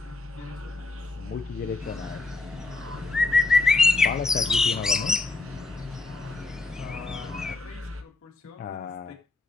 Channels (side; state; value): right; quieter; 3.5 dB